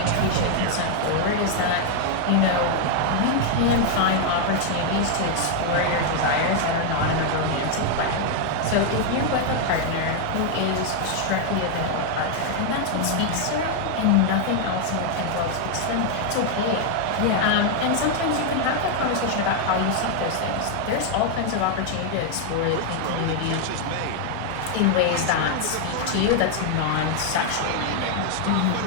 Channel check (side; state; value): both; different; correlation 0.00